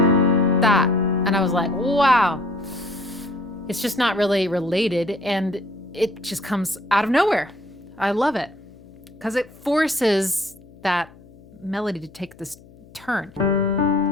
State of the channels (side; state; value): left; noise; hum, 24 dB below the sound